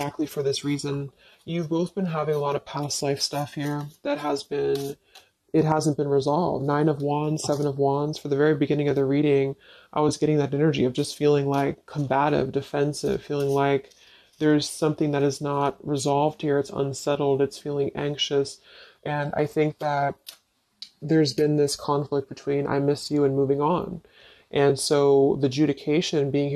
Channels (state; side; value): identical; both; correlation 1.00